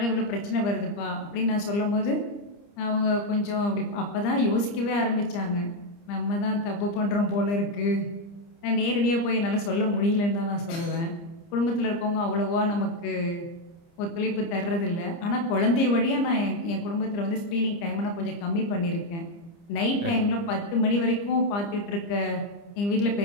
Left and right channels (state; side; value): late; right; 30 ms